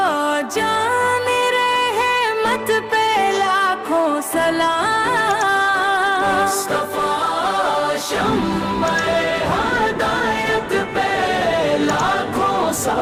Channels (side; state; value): both; identical; correlation 1.00